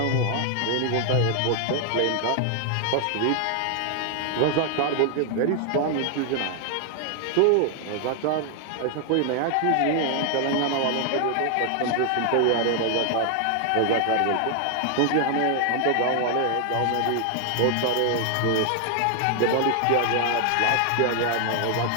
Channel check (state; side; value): different; both; correlation 0.00